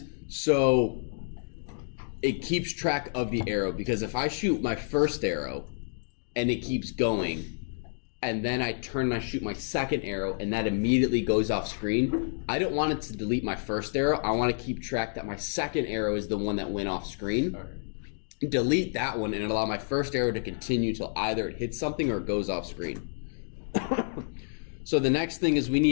so it keeps track of the arrow, because if I shoot my first arrow and it keeps going, and then I turn and I shoot my second arrow and that immediately goes off screen, I don't want it to delete my first arrow. I want to keep track that my second arrow is the one that went off screen. Okay. Delete that one and allow my first arrow to continue till either it hits something or it goes off screen. So the next thing is we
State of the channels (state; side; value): silent; right; digital silence